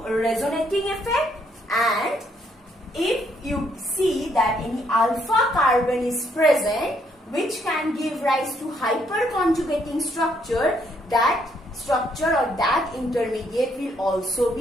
resonating effect. And if you see that any alpha carbon is present which can give rise to hyperconjugating structure, that structure or that intermediate will also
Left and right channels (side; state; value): both; normal; correlation 0.71